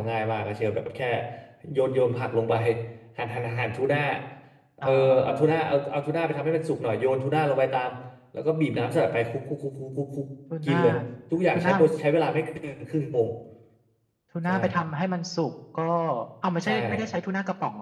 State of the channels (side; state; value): both; identical; correlation 1.00